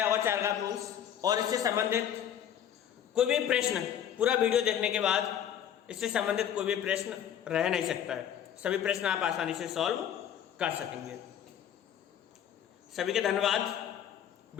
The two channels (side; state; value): right; quieter; 9.7 dB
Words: होगा चारघात रूल्स, और इससे संबंधित कोई भी प्रश्न पूरा वीडियो देखने के बाद इससे संबंधित कोई भी प्रश्न रह नहीं सकता है, सभी प्रश्न आप आसानी से सॉल्व कर सकेंगे। सभी के धन्यवाद।